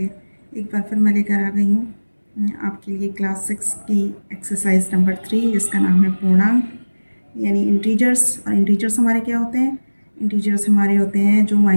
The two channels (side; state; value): both; inverted; correlation -1.00